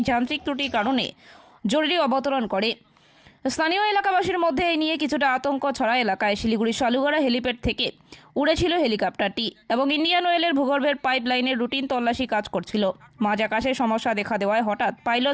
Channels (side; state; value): both; identical; correlation 1.00